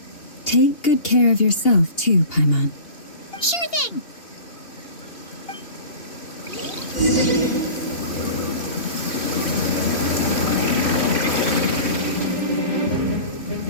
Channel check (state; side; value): late; right; 2.8 ms